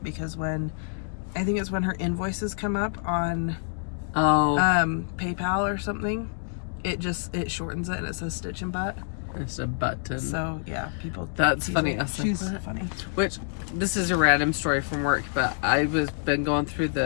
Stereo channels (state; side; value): silent; right; digital silence